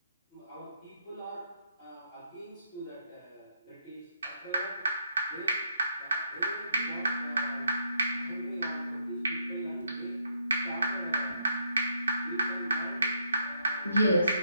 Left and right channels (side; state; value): both; inverted; correlation -0.75